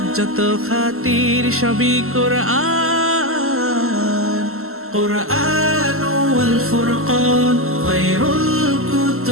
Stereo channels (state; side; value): late; left; 0.62 ms